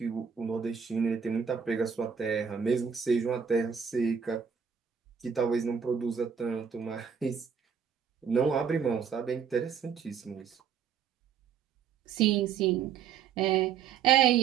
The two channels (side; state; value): left; quieter; 7.2 dB